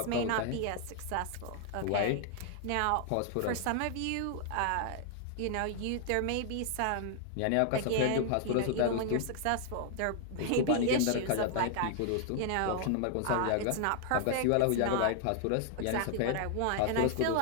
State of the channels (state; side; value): different; both; correlation 0.00